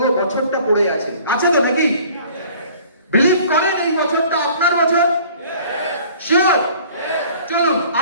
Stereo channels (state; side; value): inverted; both; correlation -0.51